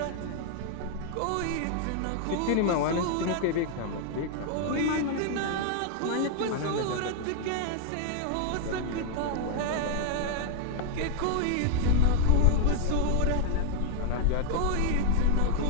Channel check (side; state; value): both; different; correlation 0.00